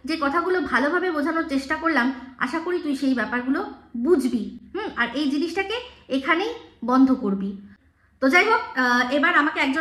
যে কথাগুলো ভালোভাবে বোঝানোর চেষ্টা করলাম, আশা করি তুই সেই ব্যাপারগুলো বুঝবি, আর এই জিনিসটাকে এখানেই বন্ধ করবি। তো যাই হোক, এবার আমাকে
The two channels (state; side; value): identical; both; correlation 1.00